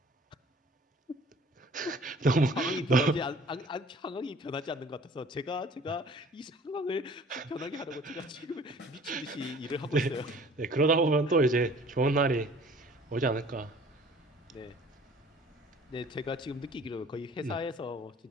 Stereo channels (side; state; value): both; normal; correlation 0.51